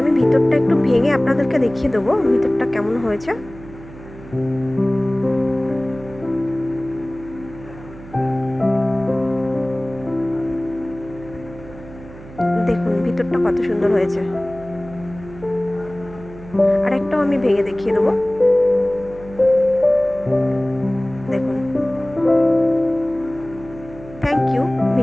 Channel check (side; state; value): right; noise; hum, 17 dB below the sound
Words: আমি ভিতরটা একটু ভেঙে আপনাদেরকে দেখিয়ে দেবো ভিতরটা কেমন হয়েছে। দেখুন ভিতরটা কত সুন্দর হয়েছে। আর একটাও আমি ভেঙে দেখিয়ে দেবো। দেখুন। থ্যাংক ইউ